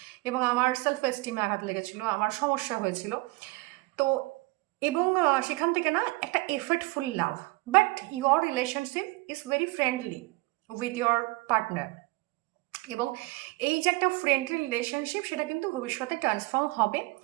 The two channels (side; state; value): left; quieter; 23.6 dB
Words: এবং আমার সেলফ এস্টিমে আঘাত লেগেছিল, আমার সমস্যা হয়েছিল। তো এবং সেখান থেকে না একটা effortful love, but your relationship is very friendly with your partner, এবং এই যে একটা ফ্রেন্ডলি রিলেশনশিপ সেটা কিন্তু ভবিষ্যতে ট্রান্সফর্ম হবে